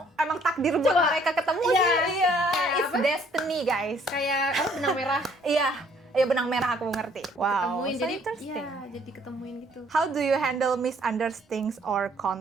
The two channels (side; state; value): both; normal; correlation 0.62